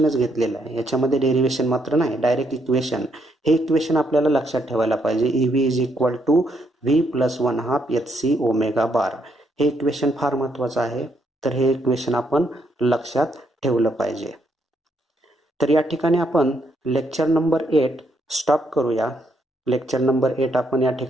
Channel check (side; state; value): both; normal; correlation 0.74